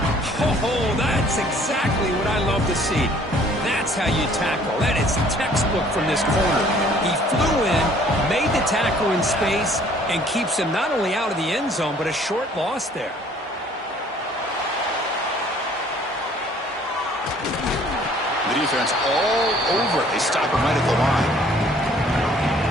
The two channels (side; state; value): both; normal; correlation 0.57